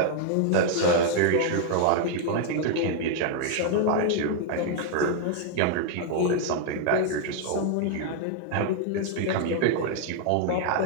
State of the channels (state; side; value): different; both; correlation 0.00